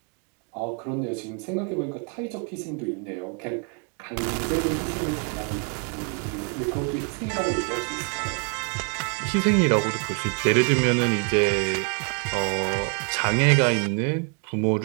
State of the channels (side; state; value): left; quieter; 38.0 dB